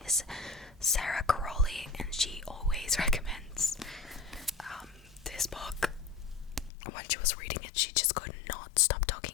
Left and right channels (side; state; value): right; drops out; at 6.7 s